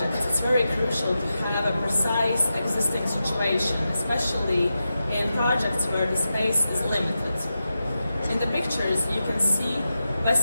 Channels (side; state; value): both; inverted; correlation -0.90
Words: it's very crucial to have a precise existing situation, especially in projects where the space is limited. In the pictures, you can see